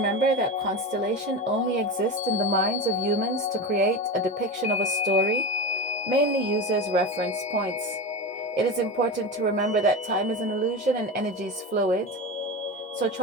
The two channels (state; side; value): normal; both; correlation 0.23